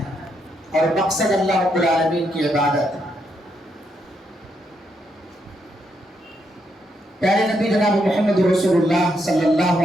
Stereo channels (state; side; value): normal; both; correlation 0.78